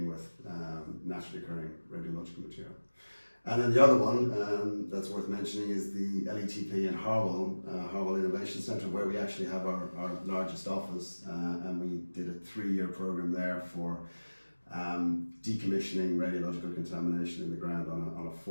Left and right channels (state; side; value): inverted; both; correlation -1.00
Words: with naturally occurring radiological material. And then the other one that's worth mentioning is the LETP in Harwell, Harwell Innovation Centre, where we actually have our largest office, and we did a 3-year program there for decommissioning radiological contamination in the ground on a